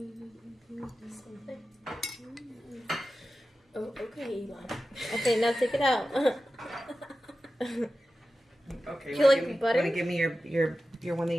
Oh, okay, Elon. Okay, now take it out. Okay. Do you like butter? Want to give me your one that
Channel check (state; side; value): normal; both; correlation 0.93